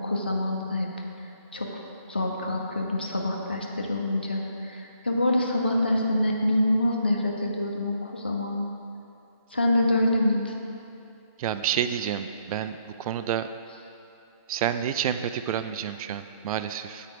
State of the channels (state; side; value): inverted; both; correlation -0.69